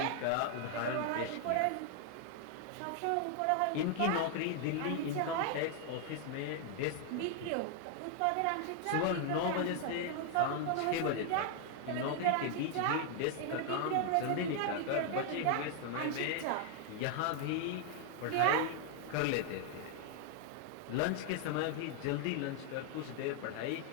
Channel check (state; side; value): different; both; correlation 0.00